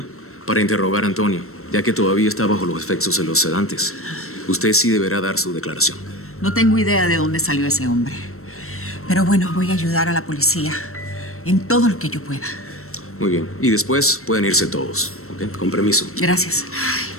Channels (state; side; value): late; right; 0.63 ms